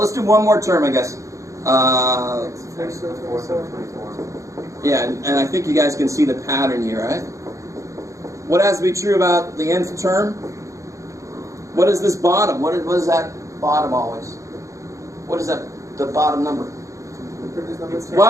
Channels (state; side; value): late; left; 0.15 ms